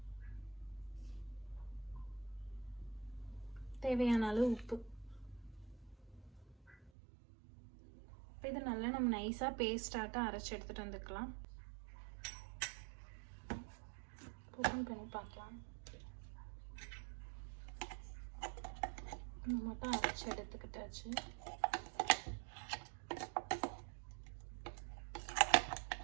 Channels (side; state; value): left; drops out; at 6.9 s